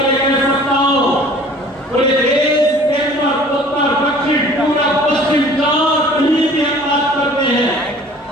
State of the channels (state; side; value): normal; both; correlation 0.49